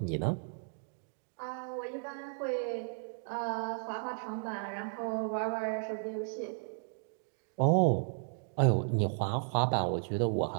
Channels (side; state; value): left; silent; digital silence